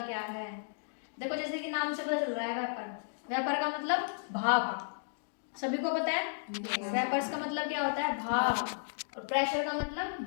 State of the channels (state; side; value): silent; right; digital silence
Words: क्या है। देखो जैसे कि नाम से पता चल रहा है वेपर, वेपर का मतलब भाप, सभी को पता है। वेपर्स का मतलब क्या होता है, भाप, और प्रेशर का